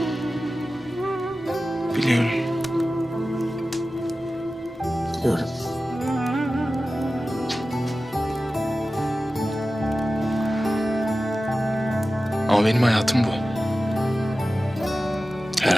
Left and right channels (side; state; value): both; normal; correlation 0.95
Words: Biliyorum. Biliyorum. Ama benim hayatım bu. Her